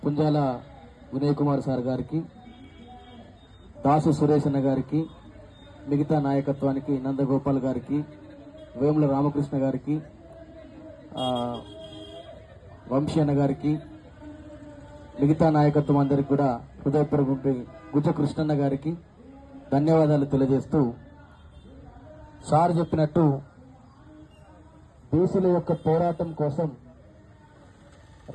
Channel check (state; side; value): identical; both; correlation 1.00